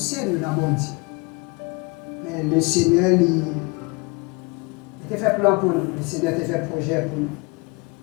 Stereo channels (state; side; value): quieter; right; 27.6 dB